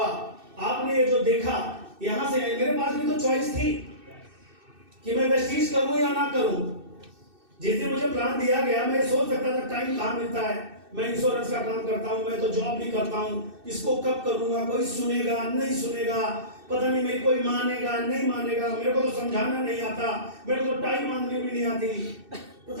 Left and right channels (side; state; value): left; late; 2.6 ms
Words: आपने ये जो देखा, यहाँ से मेरे पास भी तो चॉइस थी कि मैं वेस्टीज करूं या ना करूं। जिस दिन मुझे प्लान दिया गया, मैं सोच सकता था टाइम कहाँ मिलता है, मैं इंश्योरेंस का काम करता हूँ, मैं तो जॉब भी करता हूँ, इसको कब करूंगा, कोई सुनेगा नहीं सुनेगा, पता नहीं मेरी कोई मानेगा नहीं मानेगा, मेरे को तो समझाना नहीं आता, मेरे को तो टाइम मांगनी भी नहीं आती,